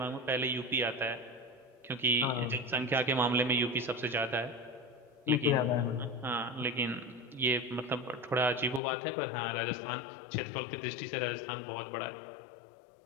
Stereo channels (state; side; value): drops out; right; at 8.8 s